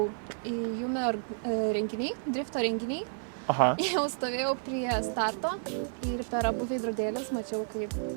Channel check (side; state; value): left; silent; digital silence